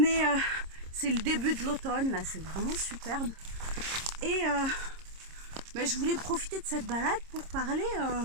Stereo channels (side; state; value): left; late; 26 ms